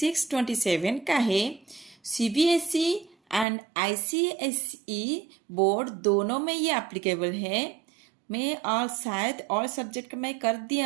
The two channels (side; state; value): left; drops out; at 3.5 s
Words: का है। सीबीएसई एंड आईसीएसई बोर्ड दोनों में ये एप्लीकेबल है। मैं और शायद और सब्जेक्ट का मैं कर